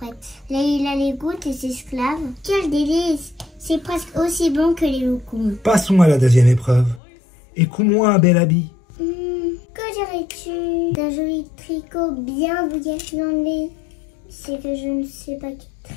Leïla les goûte et s'esclave. Quel délice! C'est presque aussi bon que les loukoums. Passons à la 2e épreuve. Et couds-moi un bel habit. Que dirais-tu d'un joli tricot bien bouillasse dans le lait? C'est que je ne sais pas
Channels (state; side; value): drops out; right; at 7.0 s